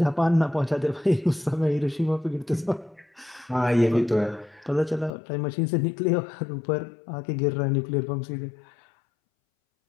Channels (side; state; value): right; drops out; at 5.1 s